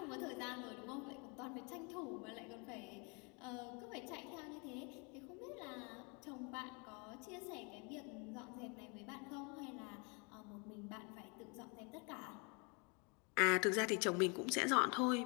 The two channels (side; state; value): right; quieter; 32.6 dB